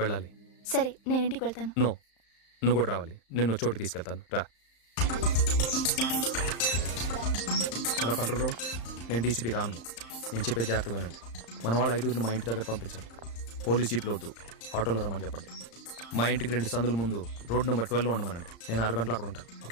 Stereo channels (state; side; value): late; right; 35 ms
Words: వెళ్ళాలి. సరే నేను ఇంటికి వెళ్తాను. నో, నువ్వు కూడా రావాలి. నిన్ను చోటుకి తీసుకెళ్తాను, రా. హలో కంట్రోల్ రూమ్, నేను డీసీపీ రాను. నేను చెప్పే జాగ్రత్త వినండి. మన వాళ్ళు 5 మా ఇంటి దగ్గర పంపించండి. పోలీస్ జీప్లో వద్దు, ఆటోలో రమ్మని చెప్పండి. మా ఇంటికి 2 సందుల ముందు రోడ్ నెంబర్ 12లో ఉండమనండి. నేను 6 గంటలు అక్కడ ఉంటాను.